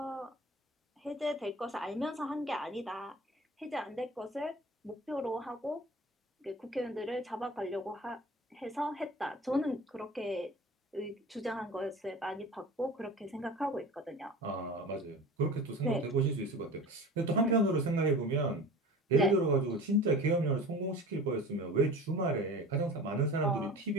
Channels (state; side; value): normal; both; correlation 0.38